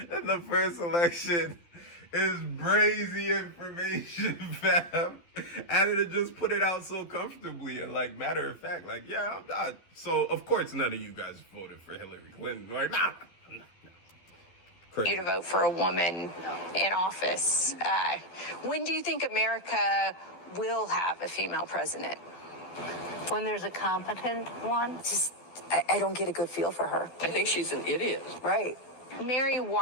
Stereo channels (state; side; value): late; right; 12 ms